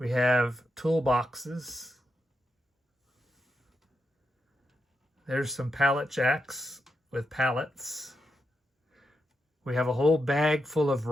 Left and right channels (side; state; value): both; normal; correlation 0.85